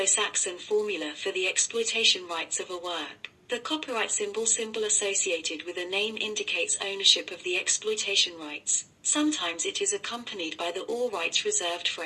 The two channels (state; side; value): identical; both; correlation 1.00